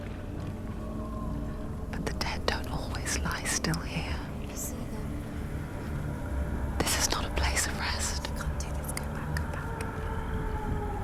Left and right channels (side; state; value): both; identical; correlation 1.00